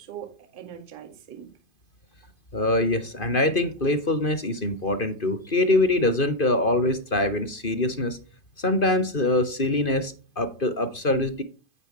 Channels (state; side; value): late; right; 2.5 ms